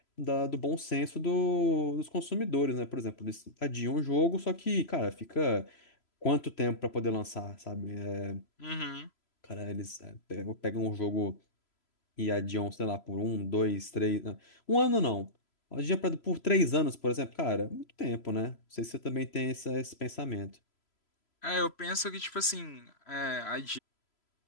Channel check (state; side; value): late; right; 3.0 ms